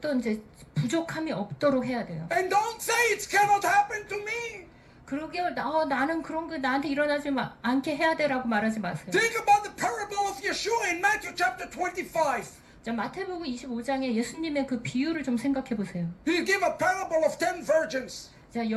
이제 부족함이 없도록 해야 돼요. And don't say it cannot happen to me. 그러게 나는 그런 거 나한테 일어나지 않게 해야 돼라고 말하지 마세요. Think about the parable of Yeshua in Matthew chapter 25. 자, 마태복음 25장에 예수님의 그 비유를 좀 생각해 보세요. He gave a parable of 10 virgins 자,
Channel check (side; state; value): both; identical; correlation 1.00